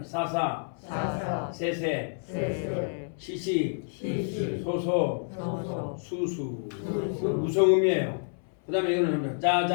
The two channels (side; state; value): right; silent; 59 dB below the other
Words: 사사, 사사, 세세, 세세, 시시, 시시, 소소, 소소, 수수. 수수. 무성음이에요. 그다음에 이거는 합니다.